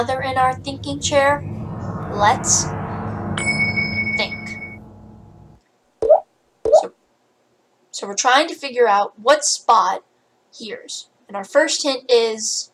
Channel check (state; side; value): identical; both; correlation 1.00